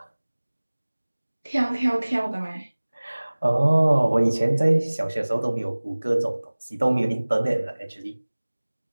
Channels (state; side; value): inverted; both; correlation -1.00